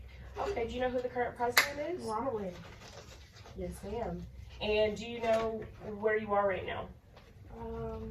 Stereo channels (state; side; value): identical; both; correlation 1.00